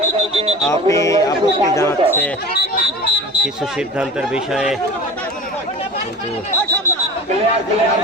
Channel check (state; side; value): normal; both; correlation 0.34